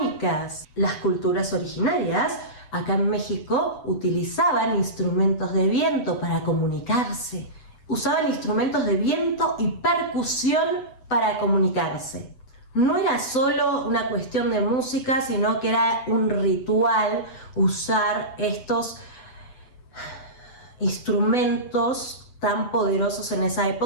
Las culturas originarias acá en México utilizaban instrumentos de viento para comunicarse. Usaban instrumentos de viento y percusión para comunicarse. No era solo una cuestión de música, sino que era un ritual usar estos instrumentos tan poderosos en esa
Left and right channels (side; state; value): right; late; 7.9 ms